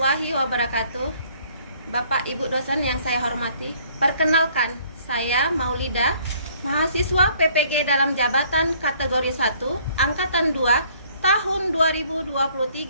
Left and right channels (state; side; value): inverted; both; correlation -0.60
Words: wabarakatuh. Bapak Ibu dosen yang saya hormati, perkenalkan, saya Maulida, mahasiswa PPG dalam jabatan kategori 1, angkatan 2, tahun